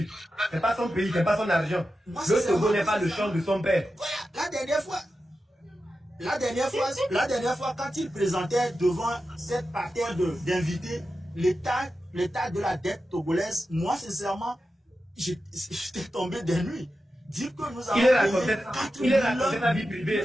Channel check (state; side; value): normal; both; correlation 0.91